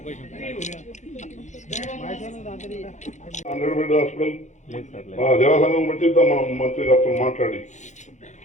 హాస్పిటల్ జలసంఘం పెట్టిద్దాం మనం మంత్రి గారితో మాట్లాడి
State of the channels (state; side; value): late; right; 0.35 ms